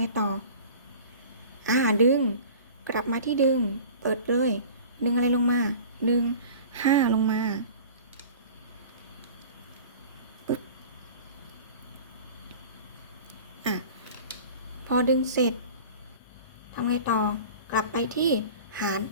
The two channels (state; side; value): inverted; both; correlation -0.41